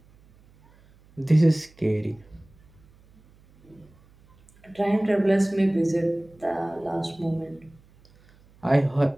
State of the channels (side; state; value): right; noise; hum, 29 dB below the sound